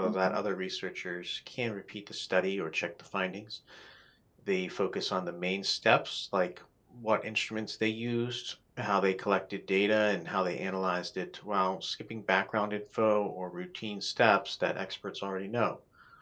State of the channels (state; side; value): identical; both; correlation 1.00